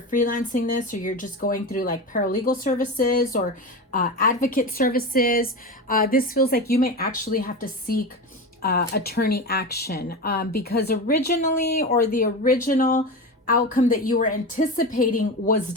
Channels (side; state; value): both; normal; correlation 0.23